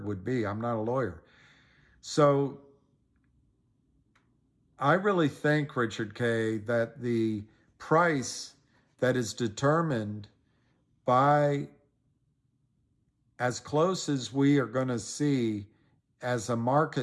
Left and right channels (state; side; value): identical; both; correlation 1.00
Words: would be. I'm not a lawyer. So I really think, Richard K., that the price that is determined by as close as we are going to see as a